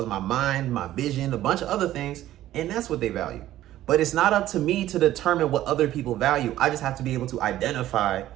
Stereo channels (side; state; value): left; quieter; 13.8 dB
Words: my mind, my vision, a bunch of other things, and that's what they value. But it's not up to me to determine what other people value. I just have to be able to identify